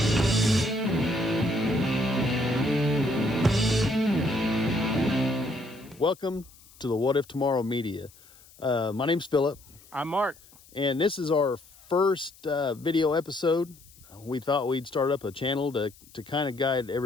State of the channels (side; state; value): left; noise; hiss, 25 dB below the sound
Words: Welcome to the What If Tomorrow Media. My name's Philip. I'm Mark. And this is our first video episode. We thought we'd start up a channel to kind of guide